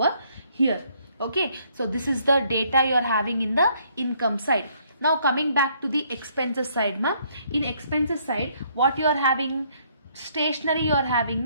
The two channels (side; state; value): both; inverted; correlation -0.67